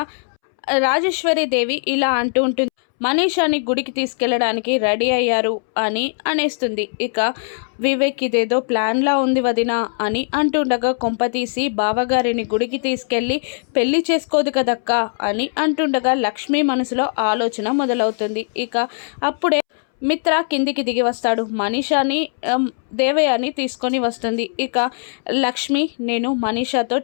రాజేశ్వరి దేవి ఇలా అంటూ ఉంటుంది, మనీషాని గుడికి తీసుకెళ్ళడానికి రెడీ అయ్యారు అని అనేస్తుంది. ఇక వివేక్ ఇదేదో ప్లాన్లా ఉంది వదినా అని అంటుండగా కొంపతీసి బావగారిని గుడికి తీసుకెళ్ళి పెళ్లి చేసుకోదు కదక్క అని అంటుండగా లక్ష్మి మనసులో ఆలోచన మొదలవుతుంది. ఇక అప్పుడే మిత్ర కిందికి దిగి వస్తాడు. మనీషాని దేవయాని తీసుకొని వస్తుంది. ఇక లక్ష్మి నేను మనీషాతో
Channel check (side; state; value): right; silent; 66 dB below the other